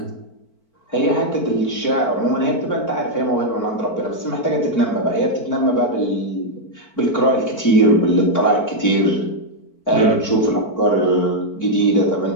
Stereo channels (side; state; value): right; late; 4.5 ms